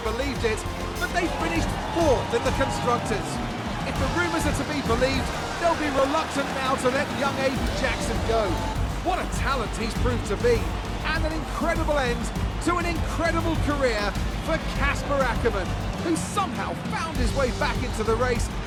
believed it, but they finished 4th in the Constructors. If the rumours are to be believed, they'll be reluctant now to let young Aiden Jackson go. What a talent he's proved to be, and an incredible end to an incredible career for Casper Ackermann, who somehow found his way back into the race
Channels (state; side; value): identical; both; correlation 1.00